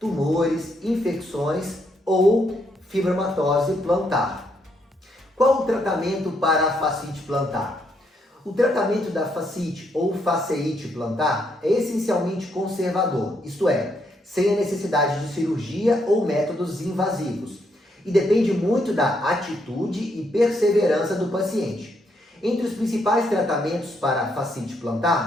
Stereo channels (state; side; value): normal; both; correlation 0.75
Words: infecções ou fibromatose plantar. Qual o tratamento para a fascite plantar? O tratamento da fascite ou fasciite plantar é essencialmente conservador, isto é, sem a necessidade de cirurgia ou métodos invasivos, e depende muito da atitude e perseverança do paciente. Entre os principais tratamentos para a fascite